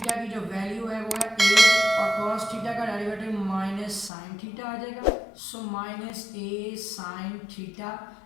की जो वैल्यू है वो है ए और कॉस थीटा का डेरिवेटिव माइनस साइन थीटा आ जाएगा। So minus a sine theta,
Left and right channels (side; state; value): right; drops out; at 4.1 s